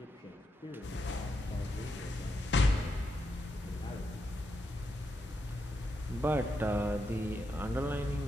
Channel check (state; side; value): normal; both; correlation 0.83